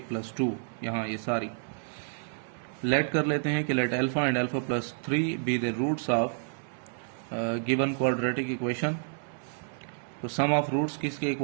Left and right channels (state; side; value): silent; left; digital silence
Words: प्लस 2। यहाँ ये सारी लेट कर लेते हैं कि let alpha and alpha plus 3 be the roots of given quadratic equation. तो सम ऑफ रूट्स किसके